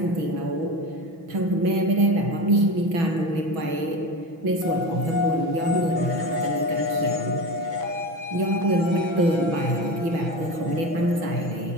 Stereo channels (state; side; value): late; left; 6.1 ms